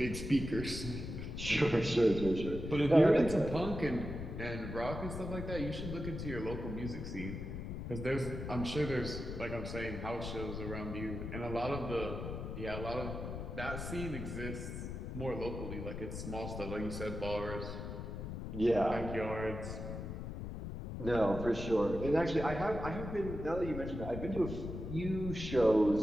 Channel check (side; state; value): left; noise; rumble, 6 dB below the sound